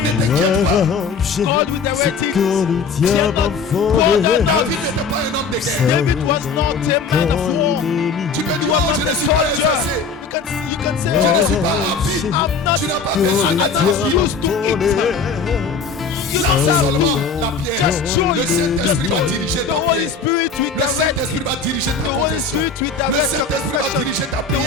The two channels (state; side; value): quieter; right; 4.9 dB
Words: Ne t'inquiète pas. Arracher God with the ce red que teeth. le diable a volé. David n'était pas un homme de guerre. David was not a man of war. Tu peux dire, oh, je ne suis pas exercé. You can say, Je ne oh, suis pas rapide. Tu n'as pas besoin d'être rapide. Lance seulement la pierre. Le Saint-Esprit va diriger ta the Holy pierre. Spirit with Le Saint-Esprit va diriger ta confession. Le Saint-Esprit va diriger ta the Holy